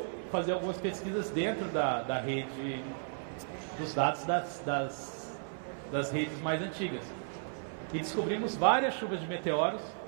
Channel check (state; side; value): silent; left; 55 dB below the other